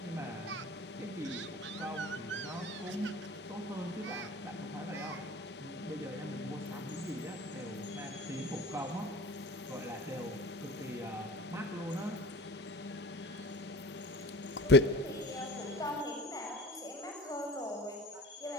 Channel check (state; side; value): normal; both; correlation 0.39